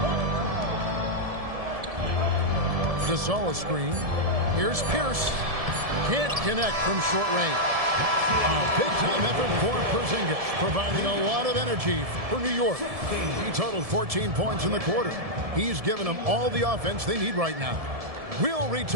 Gasol screen. Here's Pierce. Can't connect from short range. A big-time effort for Porzingis, providing a lot of energy for New York. He totaled 14 points in the quarter. He's given them all the offense they need right now. We'll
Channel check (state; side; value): late; left; 1.7 ms